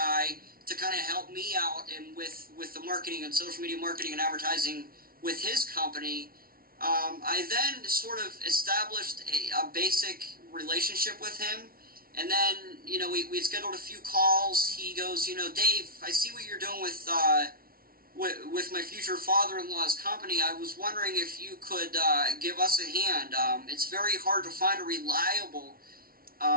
to kind of help me out and with the marketing and social media marketing and advertising with his company. I then sort of established a basic relationship with him, and then we scheduled a few calls. He goes, Dave, I see what you're doing with my future father-in-law's company. I was wondering if you could give us a hand. It's very hard to find a reliable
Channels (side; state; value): left; late; 0.43 ms